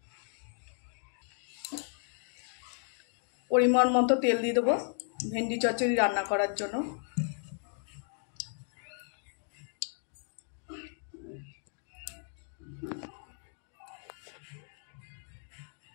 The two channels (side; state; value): right; silent; 55 dB below the other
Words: পরিমাণ মতো তেল দিয়ে দেবো ভেন্ডি চচ্চড়ি রান্না করার জন্য।